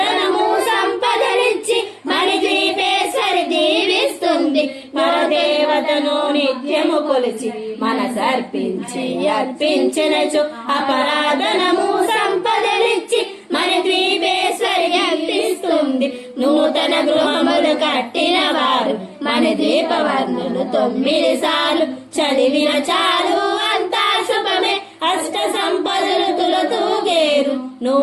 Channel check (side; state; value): both; identical; correlation 1.00